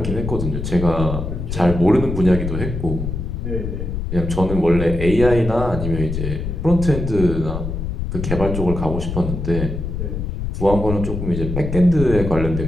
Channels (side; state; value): left; noise; rumble, 4 dB below the sound